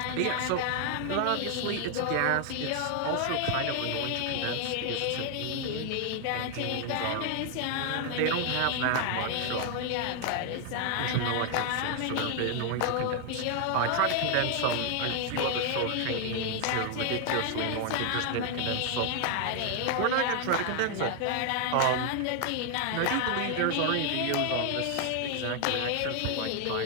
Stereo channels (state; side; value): different; both; correlation 0.00